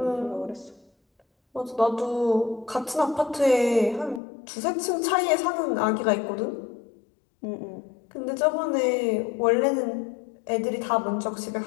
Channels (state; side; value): drops out; right; at 4.2 s